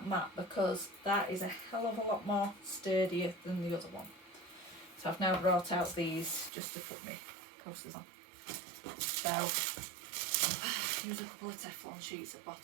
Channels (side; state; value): left; drops out; at 6.5 s